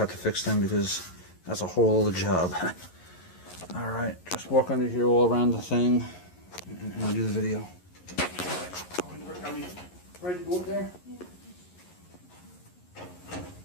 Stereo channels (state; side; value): late; right; 11 ms